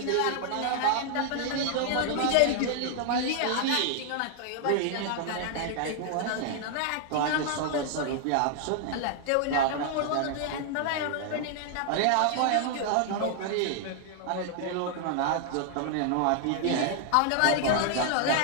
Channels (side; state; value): both; different; correlation 0.00